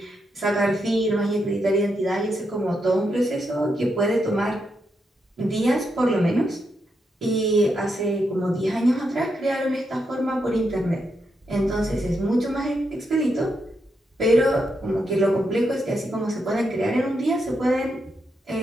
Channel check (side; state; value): both; normal; correlation 0.82